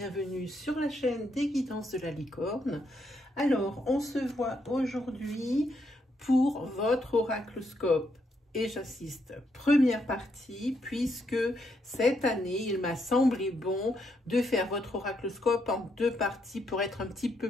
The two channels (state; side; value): normal; both; correlation 0.77